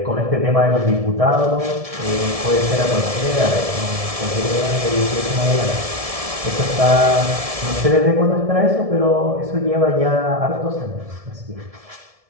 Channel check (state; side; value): late; left; 1.7 ms